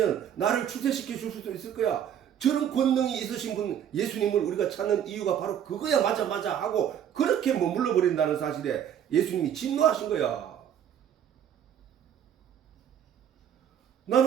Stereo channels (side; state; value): left; quieter; 9.5 dB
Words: 나를 출세시켜 줄 수도 있을 거야. 저런 권능이 있으신 분 예수님을 우리가 찾는 이유가 바로 그거야. 맞아 하고 그렇게 머물러 버린다는 사실에 예수님이 진노하신 거야.